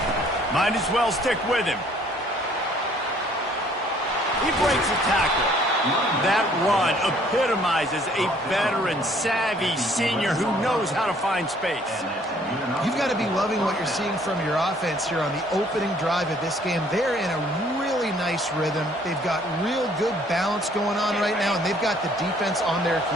Might as well stick with him. He breaks a tackle. That run epitomizes a veteran, savvy senior who knows how to find space. You've got to be loving what you're seeing from your offense here on the opening drive of this game. They're in a really nice rhythm. They've got real good balance going on right now, and they've got the defense on their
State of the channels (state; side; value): normal; both; correlation 0.60